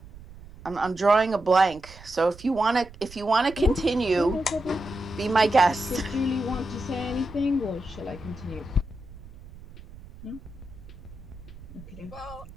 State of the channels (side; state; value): right; noise; rumble, 18 dB below the sound